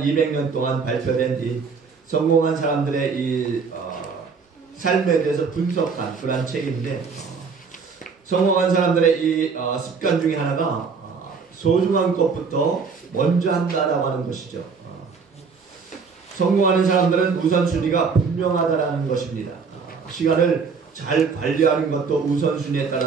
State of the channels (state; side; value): quieter; left; 5.3 dB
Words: 200년 동안 발표된 이 성공한 사람들의 이 삶에 대해서 분석한 그런 책인데 성공한 사람들의 이 습관 중에 하나가 소중한 것부터 먼저 한다라고 하는 것이죠. 성공하는 사람들은 우선순위가 분명하다라는 것입니다. 시간을 잘 관리하는 것도 우선순위에